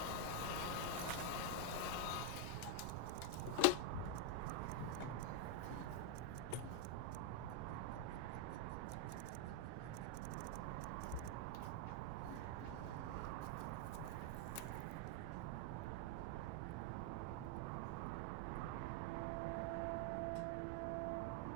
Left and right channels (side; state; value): both; different; correlation 0.01